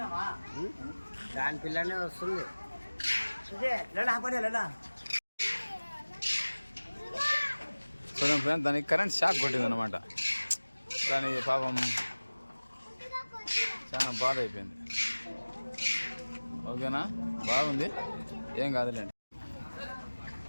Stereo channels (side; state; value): both; inverted; correlation -1.00